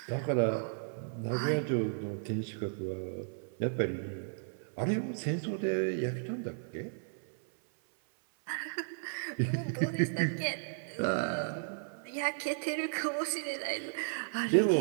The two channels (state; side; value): silent; left; 55 dB below the other